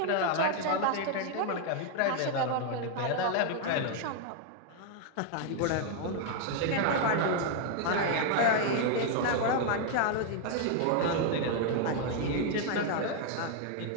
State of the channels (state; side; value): different; both; correlation 0.00